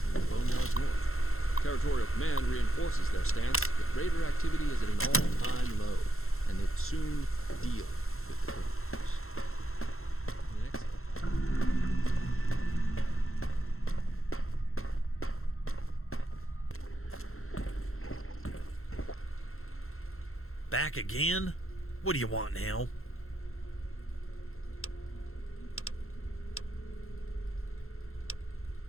in the Boneyards North. Territorial Command reinforces their stance that Raider activity is at an all-time low, and they will soon deal with the criminals. Back again? What do you want now?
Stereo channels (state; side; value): late; right; 0.62 ms